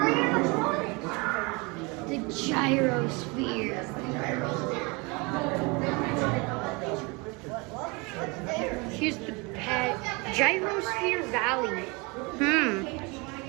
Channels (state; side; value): quieter; left; 27.9 dB